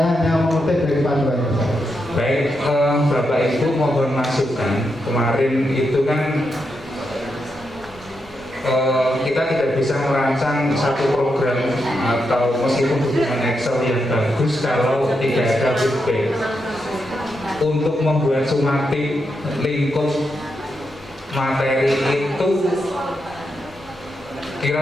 hanya mengutip dari panduan. Baik, Bapak Ibu mohon masukan. Kemarin itu kan kita tidak bisa merancang satu program atau meskipun dokumen Excel yang bagus kalau tidak ada feedback. Untuk membuat sumatik lingkup materi itu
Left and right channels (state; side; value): normal; both; correlation 0.84